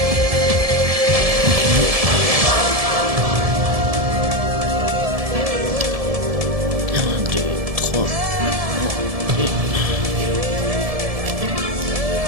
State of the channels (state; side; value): late; left; 1.7 ms